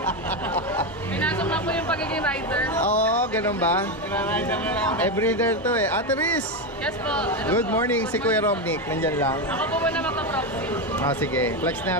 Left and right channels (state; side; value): normal; both; correlation 0.12